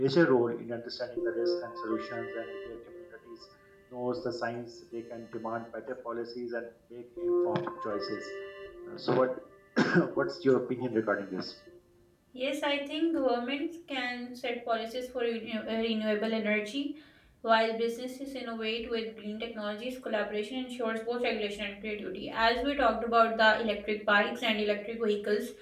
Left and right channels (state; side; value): identical; both; correlation 1.00